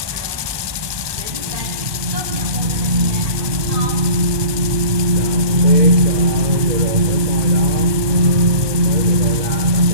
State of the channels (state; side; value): late; left; 1.2 ms